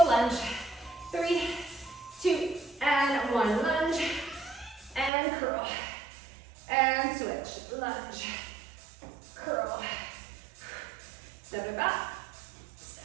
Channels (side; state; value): left; drops out; at 5.1 s